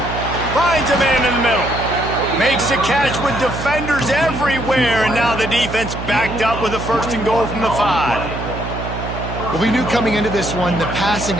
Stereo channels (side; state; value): right; noise; hum, 7 dB below the sound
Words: Finds a man in the middle. Makes a catch with defenders everywhere, and now the defense backed up with a 1st and goal from the 5. Well, we knew coming into this one, the passing